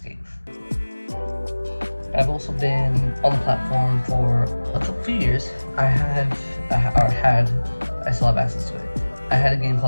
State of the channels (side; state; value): both; inverted; correlation -1.00